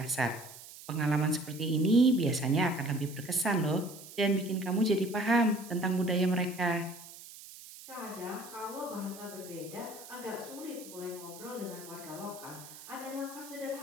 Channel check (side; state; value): right; noise; hiss, 16 dB below the sound